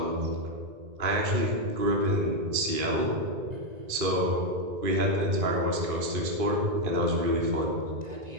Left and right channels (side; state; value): left; late; 2.5 ms